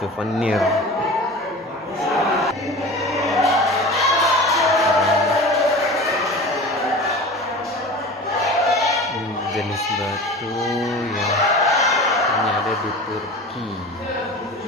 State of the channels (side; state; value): both; normal; correlation 0.36